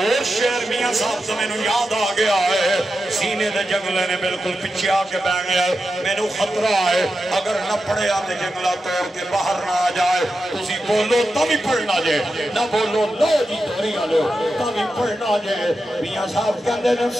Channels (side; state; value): both; normal; correlation 0.90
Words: شعر میاں صاحب سے میں نے یاد آ گیا ہے سینے دے جنگلے نے بالکل پیچھے آ کے بہ گیا میں نے خطرہ ہے اگر نہ پڑے آتے جنگلہ توڑ کے باہر نہ آ جائے تسی بولو تمی پڑھنا جائے نہ بولو لو جی توری آلو تمی پڑھنا جائے میاں صاحب کہندے نے